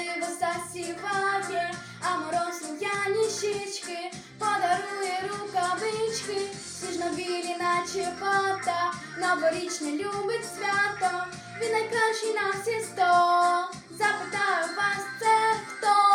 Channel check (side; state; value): both; identical; correlation 1.00